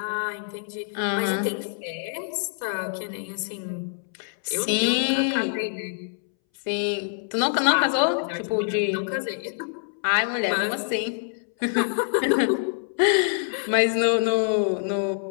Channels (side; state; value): right; silent; 61 dB below the other